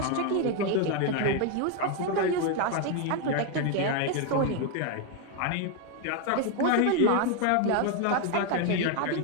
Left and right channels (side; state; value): both; different; correlation 0.01